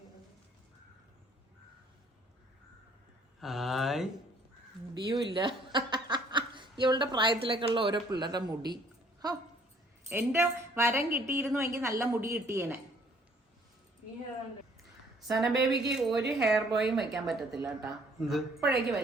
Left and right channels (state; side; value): normal; both; correlation 0.60